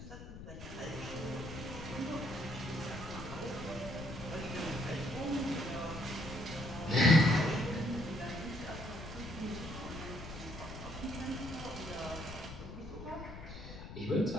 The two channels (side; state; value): left; noise; rumble, 11 dB below the sound